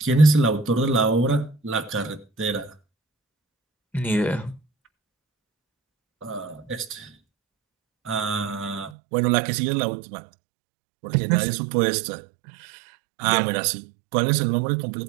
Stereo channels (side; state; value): left; drops out; at 8.9 s